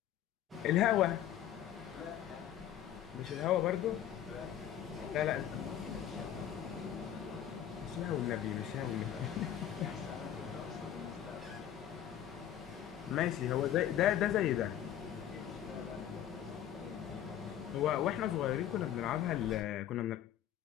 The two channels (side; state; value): right; quieter; 10.7 dB